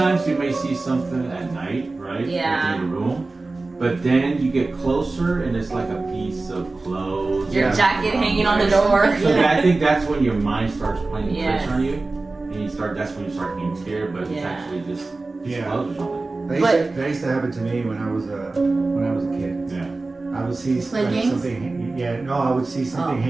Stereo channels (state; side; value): quieter; left; 3.4 dB